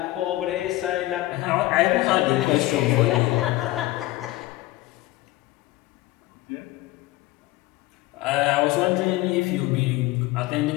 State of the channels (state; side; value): quieter; right; 17.9 dB